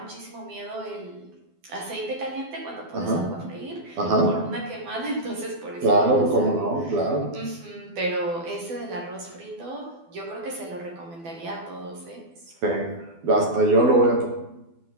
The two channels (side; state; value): left; late; 12 ms